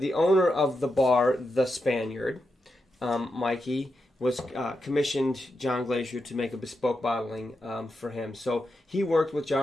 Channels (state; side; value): normal; both; correlation 0.86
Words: owner of the bar, the Spaniard, Mikey, was commissioned John Glazier to make a bespoke bottling for him. So he worked with